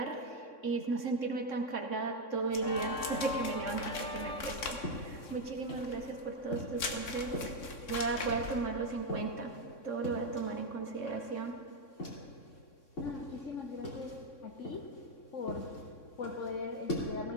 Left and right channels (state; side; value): late; right; 3.6 ms